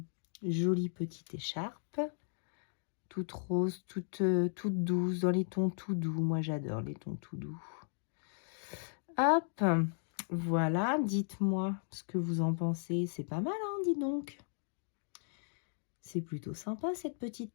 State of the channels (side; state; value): right; silent; digital silence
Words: Jolie petite écharpe. Toute rose, toute douce, dans les tons tout doux. Moi, j'adore les tons tout doux. Hop, voilà, dites-moi ce que vous en pensez. C'est pas mal, hein, dis donc. C'est plutôt sympa, cette petite